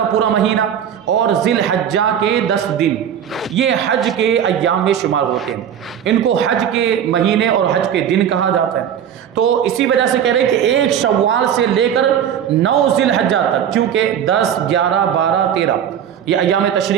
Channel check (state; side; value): quieter; left; 9.1 dB